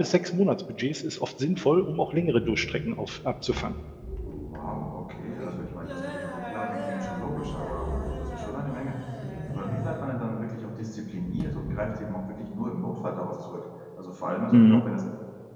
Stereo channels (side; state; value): both; identical; correlation 1.00